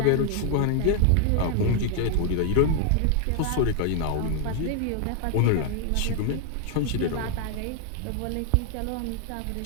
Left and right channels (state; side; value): different; both; correlation 0.00